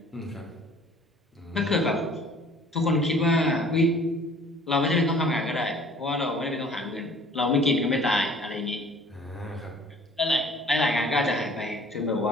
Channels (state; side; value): normal; both; correlation 0.52